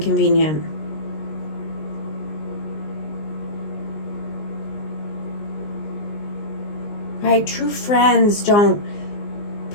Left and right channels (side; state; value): right; late; 19 ms